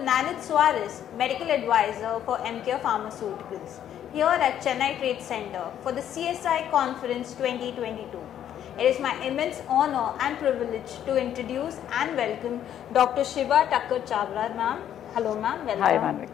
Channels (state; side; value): quieter; right; 10.4 dB